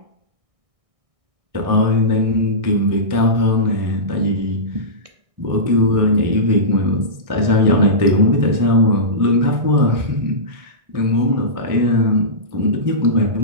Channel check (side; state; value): left; late; 1.6 ms